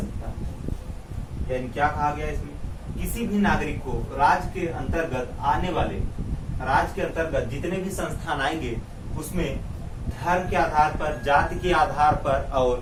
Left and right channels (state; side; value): identical; both; correlation 1.00